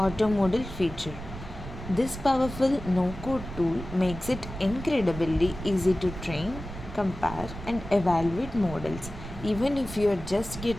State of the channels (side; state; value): right; noise; rumble, 11 dB below the sound